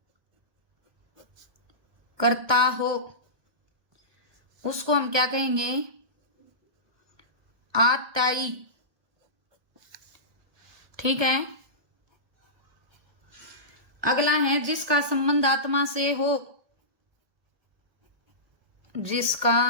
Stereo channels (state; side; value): late; left; 1.5 ms